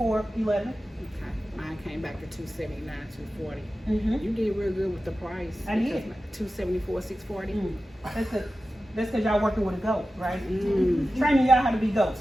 11. Okay, mine came back to 279, 240. Mm-hmm. You did real good with the price. I did. 274, 640. That's because y'all working with a goat, right? Mm. Training y'all how to be goats.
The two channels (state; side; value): normal; both; correlation 0.94